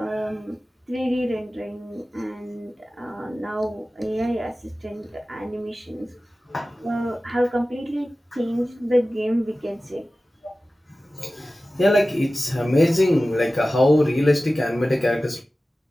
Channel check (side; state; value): both; normal; correlation 0.96